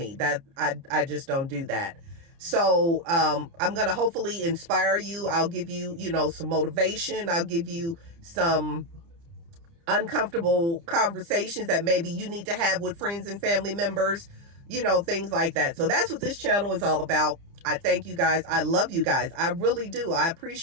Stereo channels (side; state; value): left; late; 30 ms